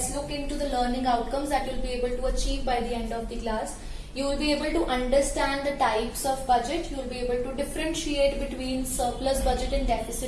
look into the learning outcomes that you'll be able to achieve by the end of the class. You will be able to understand the types of budget, you will be able to differentiate between surplus budget and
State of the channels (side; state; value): both; identical; correlation 1.00